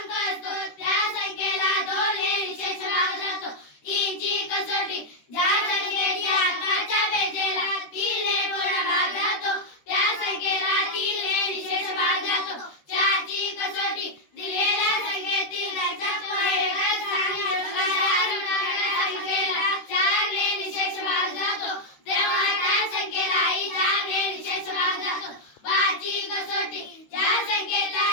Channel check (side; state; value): right; late; 13 ms